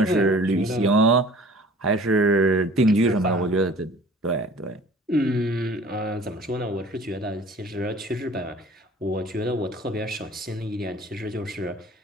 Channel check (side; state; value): both; normal; correlation 0.48